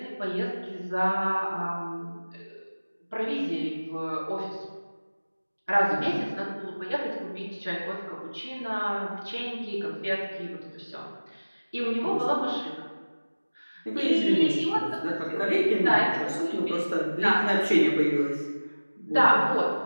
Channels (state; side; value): inverted; both; correlation -1.00